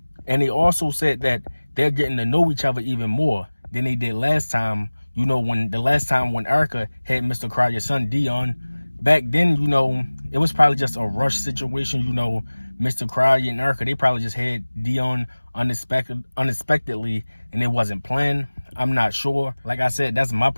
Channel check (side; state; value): both; inverted; correlation -1.00